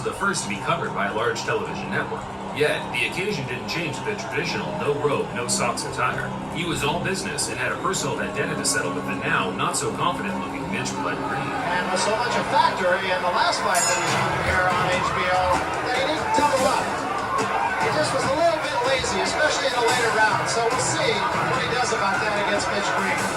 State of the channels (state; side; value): identical; both; correlation 1.00